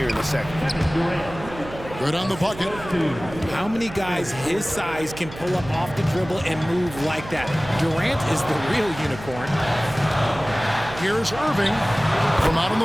in the second. Good on the bucket. How many guys his size can pull up off the dribble and move like that? Durant is the real unicorn. Here's Irving. From out on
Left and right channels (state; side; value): noise; right; hum, 14 dB below the sound